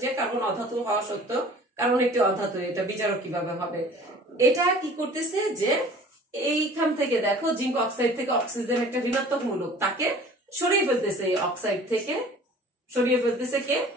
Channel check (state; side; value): normal; both; correlation 0.47